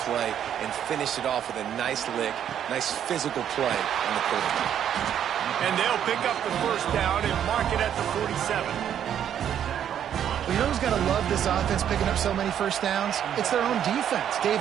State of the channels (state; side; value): quieter; left; 9.6 dB